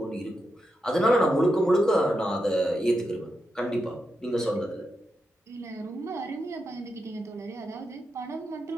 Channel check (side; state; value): both; normal; correlation 0.86